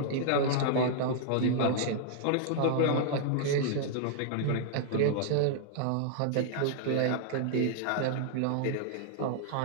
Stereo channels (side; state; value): both; different; correlation -0.01